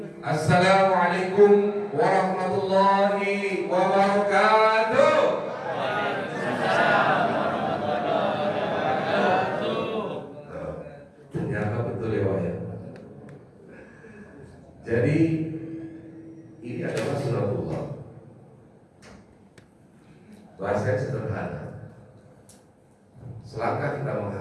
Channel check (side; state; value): both; identical; correlation 1.00